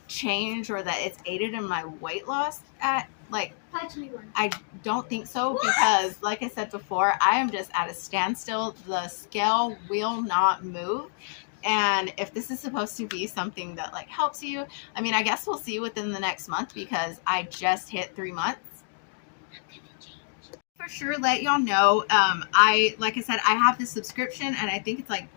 change or that it's aided in my weight loss at like, I don't think so because like I said before, I am just at a standstill. The scale will not move. And if this is supposed to be something that like helps you, I mean, I guess we'll see within the next month because I just hit 3 months. For sure, let y'all know. Like I said, I have this subscription and I think it's like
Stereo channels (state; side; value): silent; right; digital silence